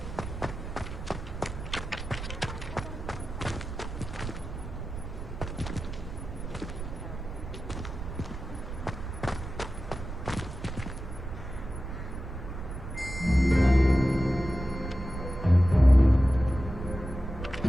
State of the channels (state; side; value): noise; right; rumble, 8 dB below the sound